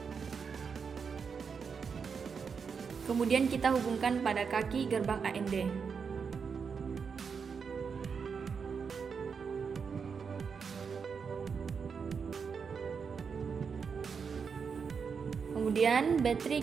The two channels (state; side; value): quieter; left; 6.0 dB